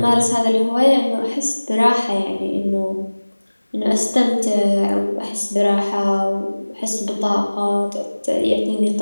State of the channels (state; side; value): inverted; both; correlation -1.00